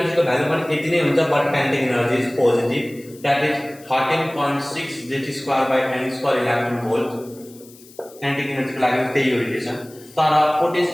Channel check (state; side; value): noise; left; hiss, 23 dB below the sound